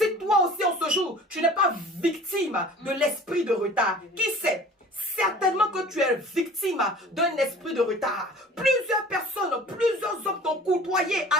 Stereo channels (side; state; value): both; normal; correlation 0.44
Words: toi aussi en ce jour, tu n'es pas victime de l'esprit de retard. Qui sait? Certainement que tu es victime d'un esprit de retard. Plusieurs personnes, plusieurs hommes t'ont côtoyé,